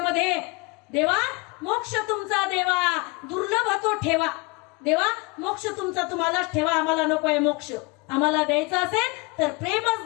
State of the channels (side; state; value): right; quieter; 27.0 dB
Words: देवा मोक्ष तुमचा देवा दुर्लभ तो ठेवा, देवा मोक्ष तुमचा तुम्हालाच ठेवा, आम्हाला नकोय मोक्ष, आम्हाला द्यायचं असेल तर